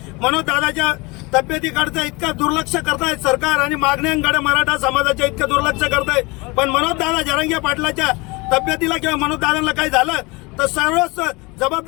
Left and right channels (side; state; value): right; quieter; 25.6 dB